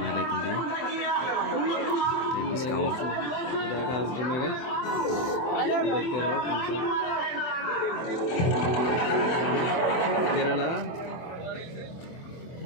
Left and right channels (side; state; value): right; late; 24 ms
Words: देखूंगी तो डिस्काउंट जाकर आज घूमेगा देखते रहो तुम Kerala